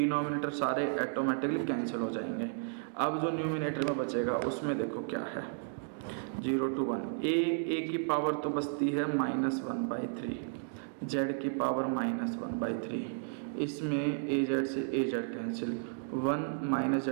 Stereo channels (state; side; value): silent; left; digital silence